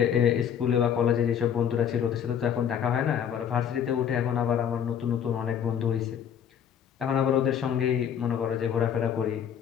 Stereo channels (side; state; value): right; quieter; 8.6 dB